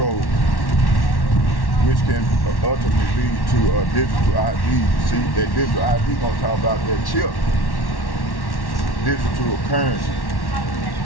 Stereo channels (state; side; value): late; right; 1.1 ms